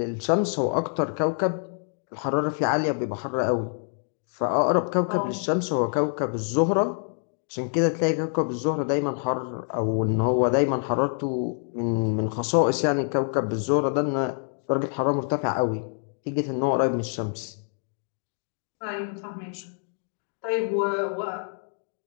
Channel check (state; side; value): silent; right; 61 dB below the other